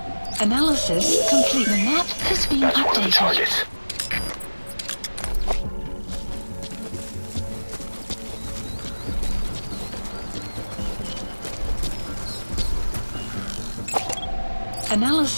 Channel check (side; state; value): both; inverted; correlation -1.00